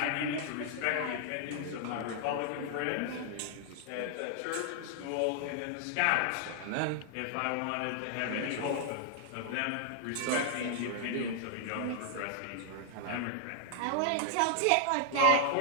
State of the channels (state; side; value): different; both; correlation 0.00